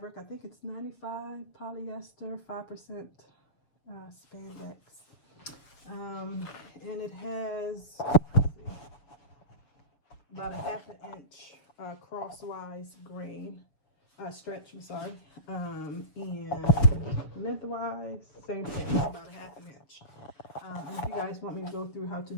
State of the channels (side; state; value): right; late; 7.1 ms